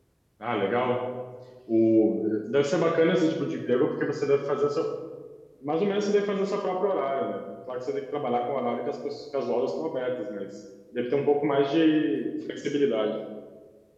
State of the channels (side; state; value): both; identical; correlation 1.00